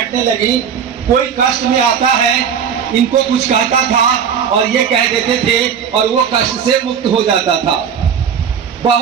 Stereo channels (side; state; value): left; quieter; 7.6 dB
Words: लगी। कोई कष्ट में आता है, इनको कुछ कहता था और ये कह देते थे और वो कष्ट से मुक्त हो जाता था।